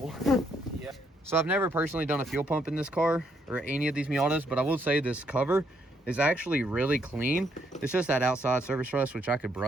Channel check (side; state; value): both; normal; correlation 0.73